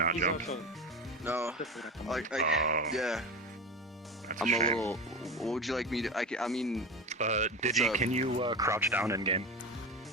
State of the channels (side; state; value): both; normal; correlation 0.24